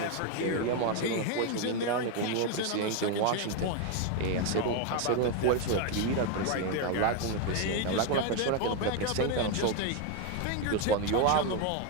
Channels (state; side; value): different; both; correlation 0.02